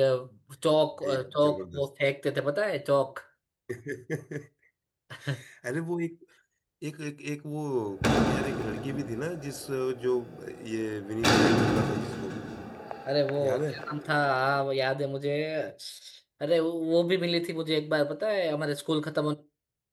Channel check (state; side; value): identical; both; correlation 1.00